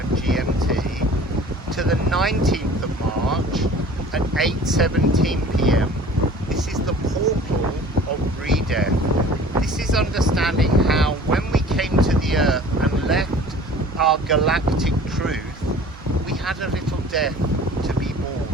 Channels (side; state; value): both; normal; correlation 0.46